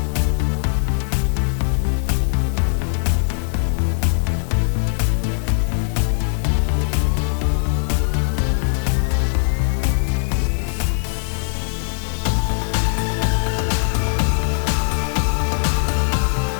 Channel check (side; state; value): right; silent; 60 dB below the other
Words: ada juga SUM, average, min, max, kali, kurang, dan